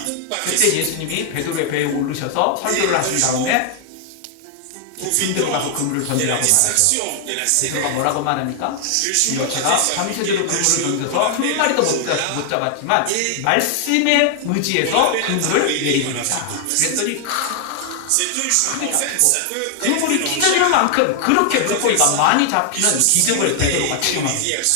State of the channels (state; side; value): different; both; correlation 0.00